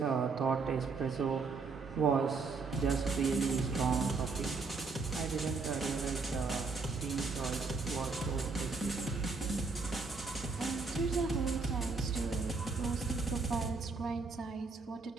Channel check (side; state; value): left; quieter; 4.4 dB